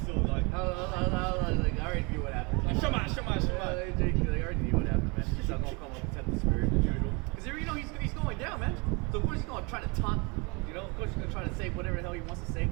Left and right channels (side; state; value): left; quieter; 29.7 dB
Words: like. I already knew what happened. Like, Shema. They already knew what happened, man. He's not gonna come up and tempt the spirit as usual. Because you know he's going down, man. So of course he's gonna try to taunt. You know, of course he's gonna try to say whatever the hell he wants to say